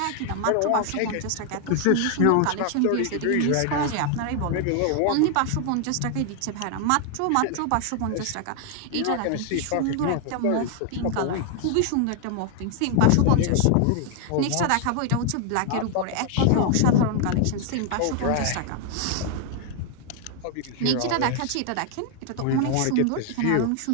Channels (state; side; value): different; both; correlation 0.00